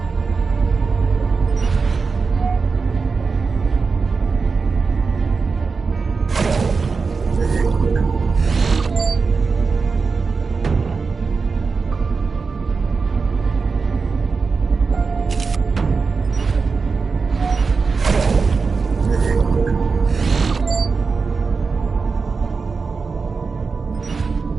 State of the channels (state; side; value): quieter; left; 4.7 dB